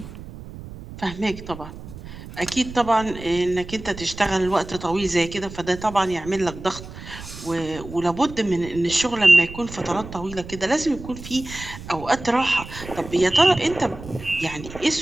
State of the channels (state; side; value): noise; right; rumble, 13 dB below the sound